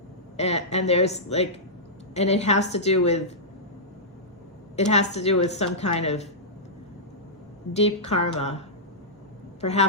And there's like, and it has to do with some kind of deep karma,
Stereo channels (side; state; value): both; normal; correlation -0.13